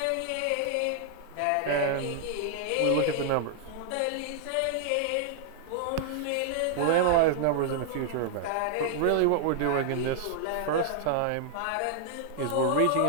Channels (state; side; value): different; both; correlation -0.01